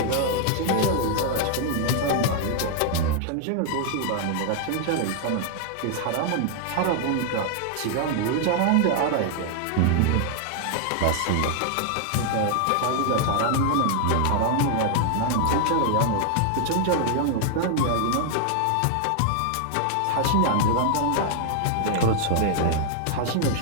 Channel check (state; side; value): different; both; correlation 0.00